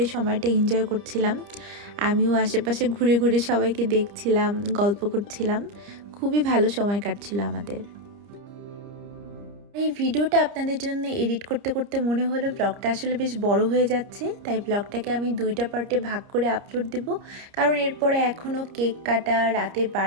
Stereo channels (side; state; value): left; late; 30 ms